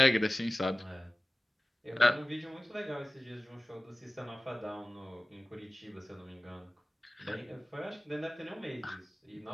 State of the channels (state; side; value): normal; both; correlation 0.96